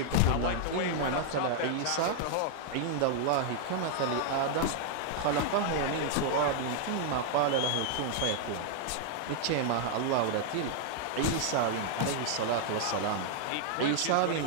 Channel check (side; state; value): both; different; correlation -0.01